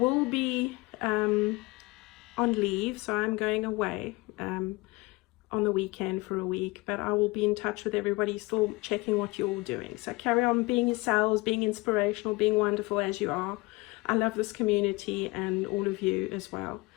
be on leave, so I'm going away on the weekend for a week, but I will be in touch with everybody, still checking what you're all doing. So carry on being yourselves, being inspirational, being wonderful as you are. I love this community and all of you as well.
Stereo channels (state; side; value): quieter; right; 23.1 dB